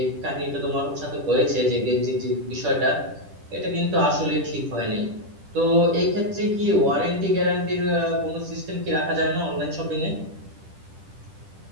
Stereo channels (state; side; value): late; left; 10 ms